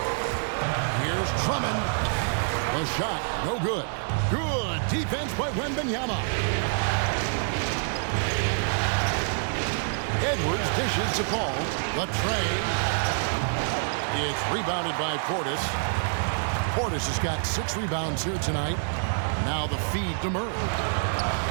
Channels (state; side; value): silent; left; 55 dB below the other